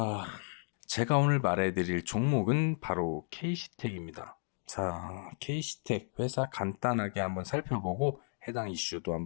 제가 오늘 말해드릴 종목은 바로 KC텍입니다. 자, KC텍 회사 간단하게 한번 살펴보고 해당 이슈도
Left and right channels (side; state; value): right; silent; digital silence